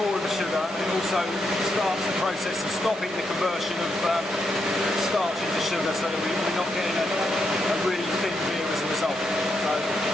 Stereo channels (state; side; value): normal; both; correlation 0.81